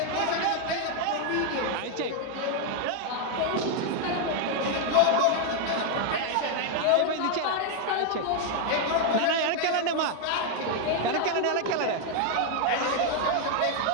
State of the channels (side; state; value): both; different; correlation 0.00